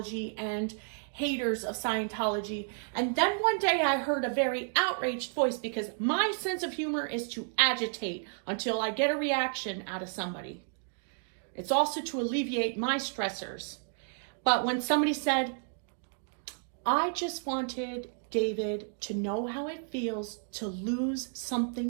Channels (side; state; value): left; silent; digital silence